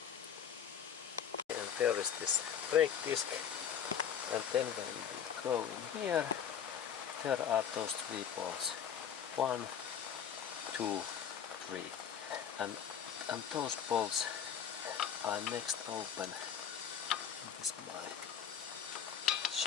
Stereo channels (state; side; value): quieter; right; 8.3 dB